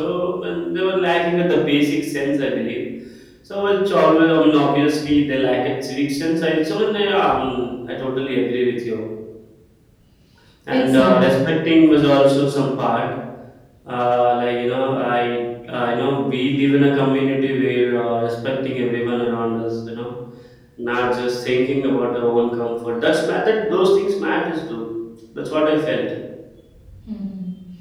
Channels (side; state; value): both; identical; correlation 1.00